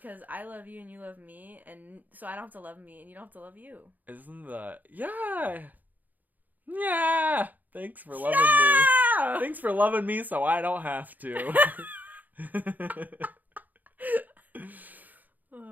I love you and you love me, and so I don't have to love me and you don't have to love you. Isn't that... Yeah! Yeah! Thanks for loving me. Thanks for loving me so I don't have to.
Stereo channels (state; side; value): late; left; 0.083 ms